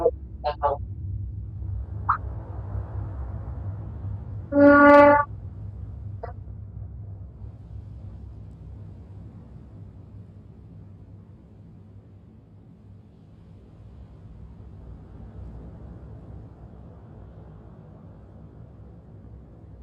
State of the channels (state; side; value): identical; both; correlation 1.00